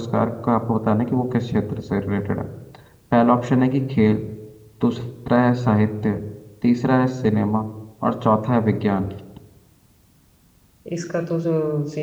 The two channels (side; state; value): both; identical; correlation 1.00